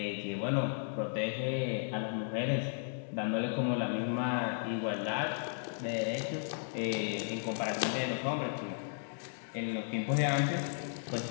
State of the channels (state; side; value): silent; right; digital silence